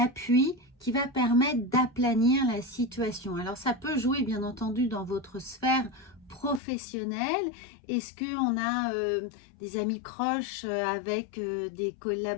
qui va permettre d'aplanir la situation. Alors ça peut jouer bien entendu dans votre sphère professionnelle. Est-ce qu'on a des amis proches avec des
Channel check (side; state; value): right; drops out; at 6.6 s